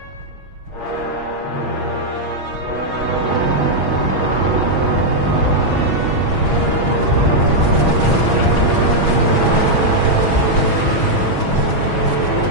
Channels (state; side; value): late; left; 6.2 ms